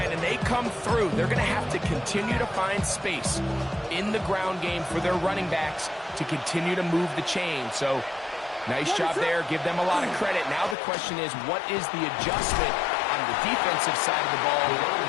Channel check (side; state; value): right; drops out; at 10.8 s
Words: and they come through. They're going to have to continue to find space in the ground game for their running backs to continue to move the chain. So, nice job there. Give them a lot of credit. Now the question is, what is the adjustment on the defensive side of the ball